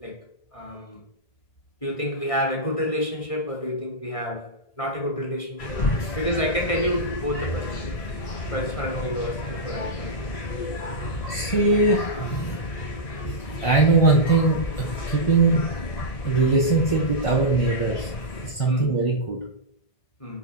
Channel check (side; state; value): right; late; 1.6 ms